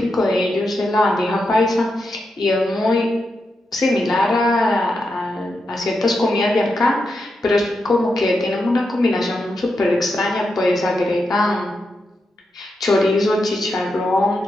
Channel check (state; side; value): normal; both; correlation 0.86